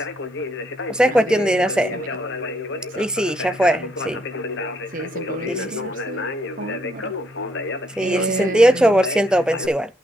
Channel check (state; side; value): normal; both; correlation 0.73